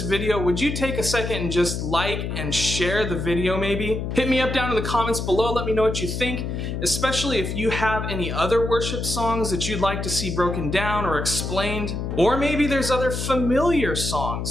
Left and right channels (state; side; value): noise; left; hum, 4 dB below the sound